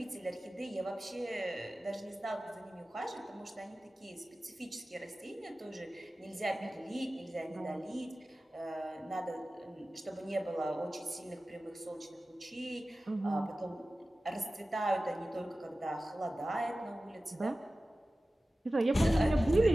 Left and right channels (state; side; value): normal; both; correlation 0.96